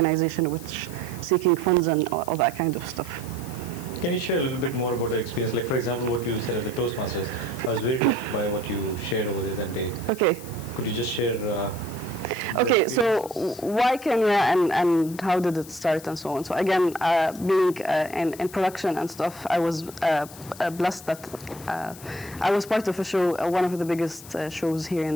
which seeking funds and all that kind of stuff. Can you share a little bit more about the experience? Like, for example, what you said at the Toastmasters. I was very touched by what you shared over there that day. Okay. Could you just share? Okay, so why Kenya and how did it start and so on? So again, being in production and stuff, I was blessed that I was part of a show, one of the biggest shows here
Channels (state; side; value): noise; left; hiss, 17 dB below the sound